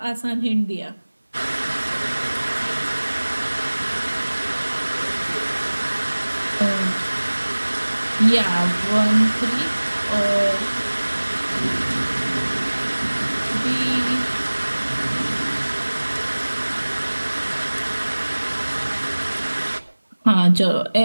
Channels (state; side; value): inverted; both; correlation -1.00